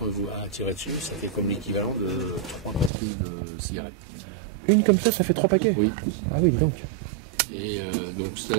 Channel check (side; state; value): left; drops out; at 2.9 s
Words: vous tirez dessus, ça fait comme l'équivalent de 3 paquets de cigarettes. Une comme ça fait 3 paquets? Oui. Ah oui, donc. Et donc ça,